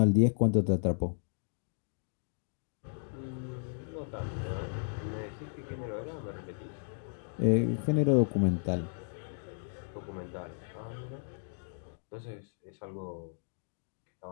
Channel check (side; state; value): right; silent; digital silence